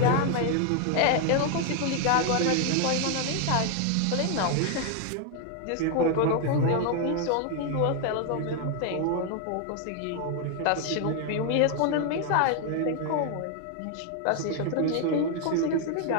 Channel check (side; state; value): both; different; correlation 0.00